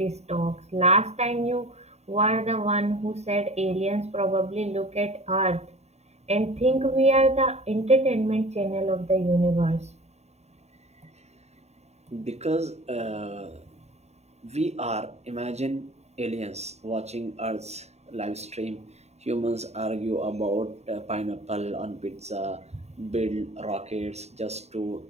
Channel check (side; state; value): left; late; 0.32 ms